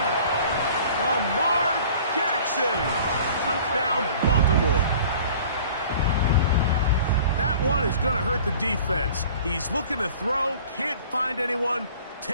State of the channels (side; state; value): both; inverted; correlation -0.47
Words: Lamar Jackson. Touchdown, Baltimore. That one is going to hurt the defense. He's looking to throw, can't find anyone,